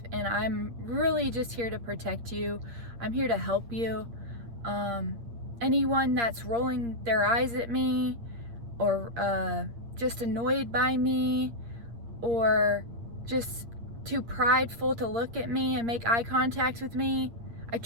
And I'm really just here to protect you. I'm here to help you. Anyone that's rolling their eyes at me or just annoyed by me or just too prideful to look at me and make eye contact with me, I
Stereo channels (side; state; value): left; late; 8.6 ms